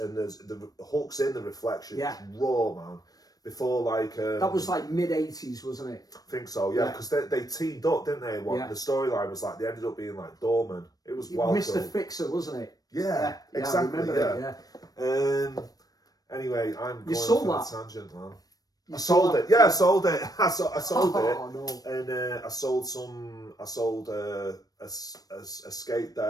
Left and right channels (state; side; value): late; right; 0.18 ms